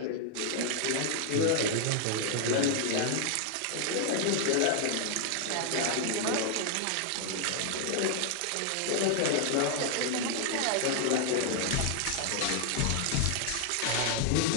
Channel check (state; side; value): different; both; correlation 0.00